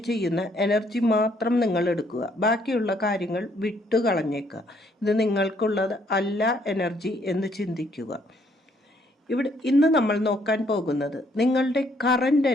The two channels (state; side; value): normal; both; correlation 0.67